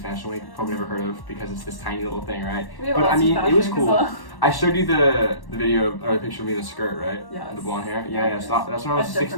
Week. Probably never heard of because it's this tiny little thing, right? But I mean, it was cool. I showed you the video or the picture of me in the skirt, right? Yeah. The blonde hair. Yeah. So that's when I was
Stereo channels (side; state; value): right; late; 1.1 ms